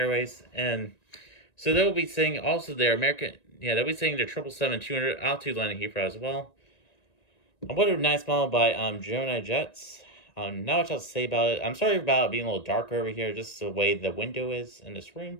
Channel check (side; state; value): right; late; 1.9 ms